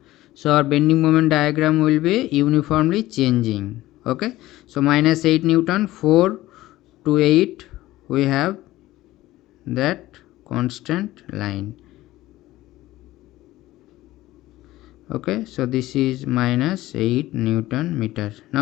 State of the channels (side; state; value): right; quieter; 16.5 dB